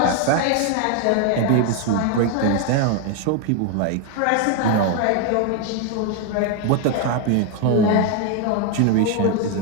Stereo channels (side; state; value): both; different; correlation 0.01